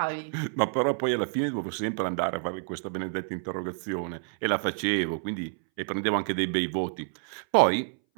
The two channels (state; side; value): silent; left; 59 dB below the other